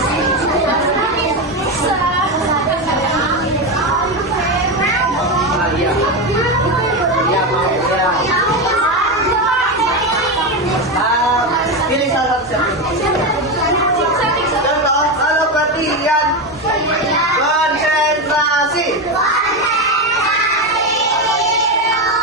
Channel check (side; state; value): both; normal; correlation 0.14